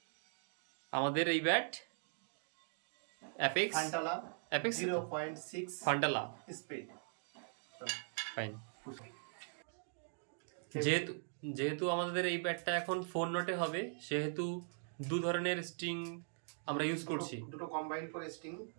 আমাদের এই ব্যাট অ্যাপেক্স ফান্টালা 0.6 ফান্টালা স্পিড। ফাইন। যেহেতু আমাদের এই ব্যাটটা এখন 4 নটে হবে, সেহেতু দু ধরনের স্ট্রিং আমরা ইউজ করছি, দুটো কম্বাইন করে স্ট্রিং।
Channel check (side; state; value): left; silent; digital silence